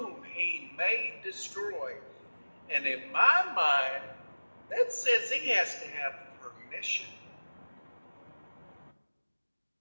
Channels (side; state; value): both; inverted; correlation -1.00